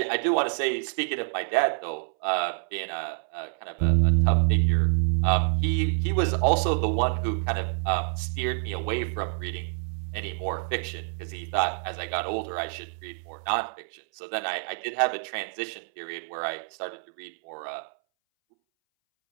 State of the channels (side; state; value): left; silent; 60 dB below the other